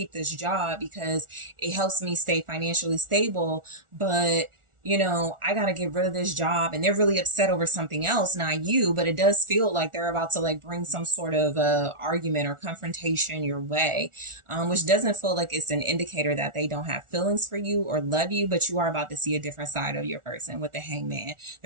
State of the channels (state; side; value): late; left; 1.4 ms